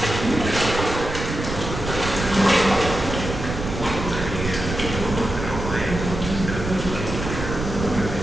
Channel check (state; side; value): noise; right; rumble, 6 dB below the sound